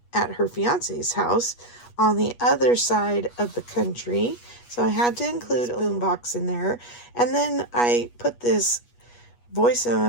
at her fiance's house on the other side of the country. So I had to include a boombox in there. And then I put this Voice of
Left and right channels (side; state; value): right; late; 8.3 ms